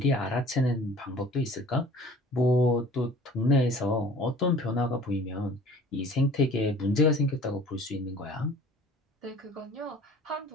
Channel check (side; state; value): both; normal; correlation 0.48